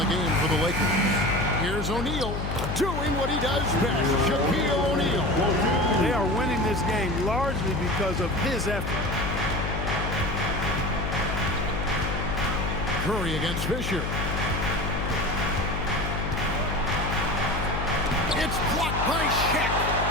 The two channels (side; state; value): left; noise; hum, 3 dB below the sound